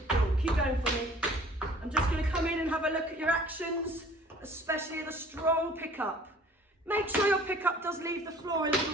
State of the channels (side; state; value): both; normal; correlation 0.51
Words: keep going for me. I'm just gonna come in and have a look at your actions, especially the strong pickup. Make sure your pickup does leave the floor a